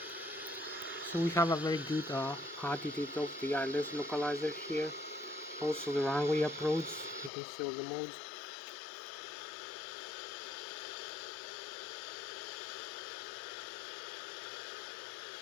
So we have a very good attitude of the Lszh localizer here. Also the runway approach, you can see all the modes.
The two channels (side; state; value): right; drops out; at 7.3 s